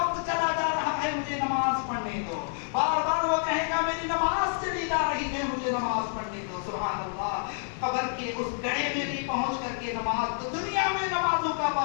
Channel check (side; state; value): right; silent; 59 dB below the other